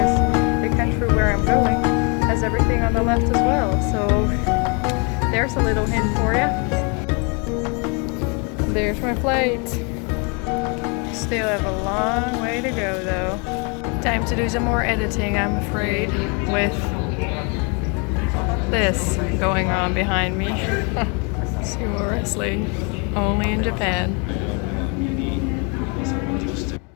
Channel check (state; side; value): quieter; right; 33.7 dB